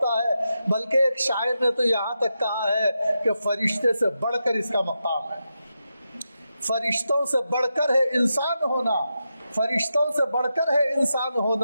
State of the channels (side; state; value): both; inverted; correlation -0.87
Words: ہے، بلکہ ایک شاعر نے تو یہاں تک کہا ہے کہ فرشتے سے بڑھ کر اس کا مقام ہے۔ فرشتوں سے بڑھ کر ہے انسان ہونا، فرشتوں سے بڑھ کر ہے انسان